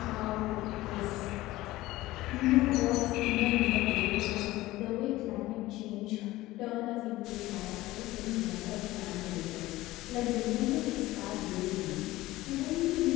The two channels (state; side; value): quieter; right; 17.7 dB